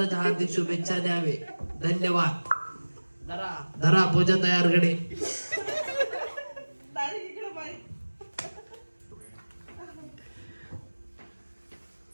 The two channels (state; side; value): inverted; both; correlation -1.00